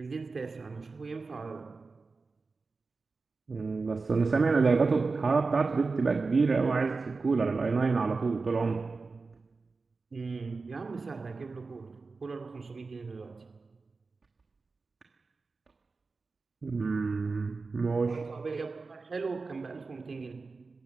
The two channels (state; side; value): quieter; left; 4.1 dB